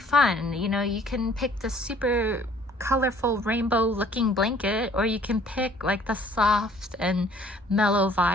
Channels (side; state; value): both; normal; correlation 0.57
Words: You can pick the super colorful rainbow looking blanket, or you can pick like the soft and mellow